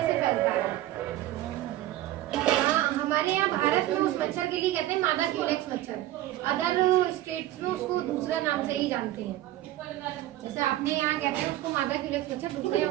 से फैलता है। हमारे यहाँ भारत में उस मच्छर के लिए कहते हैं मादा क्यूलेक्स मच्छर। अदर स्टेट्स में उसको दूसरा नाम से ही जानते हैं। जैसे आपने यहाँ कहते हैं उसको मादा क्यूलेक्स मच्छर, दूसरे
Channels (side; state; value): left; quieter; 14.6 dB